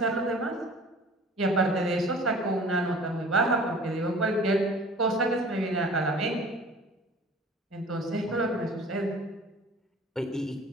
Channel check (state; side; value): normal; both; correlation 0.46